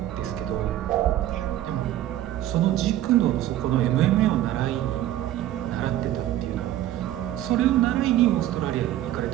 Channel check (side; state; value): left; quieter; 13.4 dB